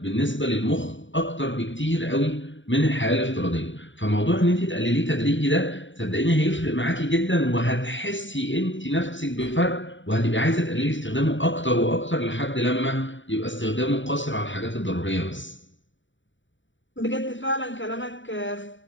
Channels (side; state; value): right; late; 0.55 ms